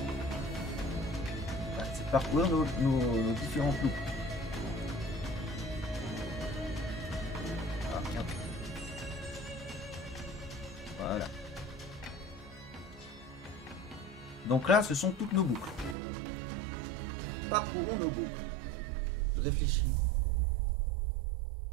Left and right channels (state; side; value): drops out; left; at 16.0 s